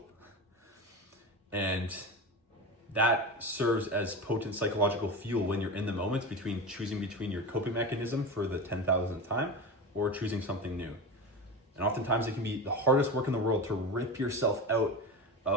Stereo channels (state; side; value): normal; both; correlation 0.25